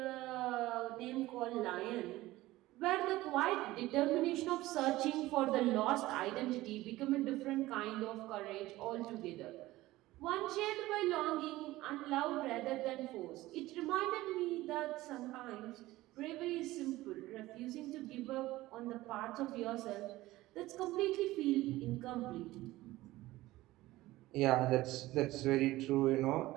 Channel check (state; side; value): quieter; left; 17.5 dB